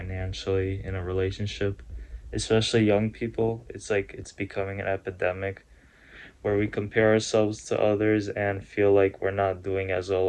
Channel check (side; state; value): both; identical; correlation 1.00